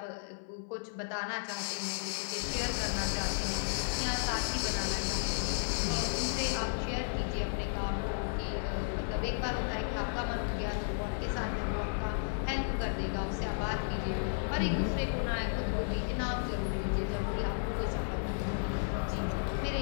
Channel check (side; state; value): right; silent; 55 dB below the other